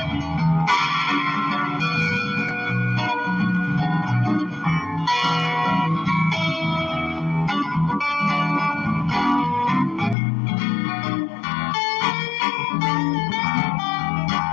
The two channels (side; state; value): right; drops out; at 10.2 s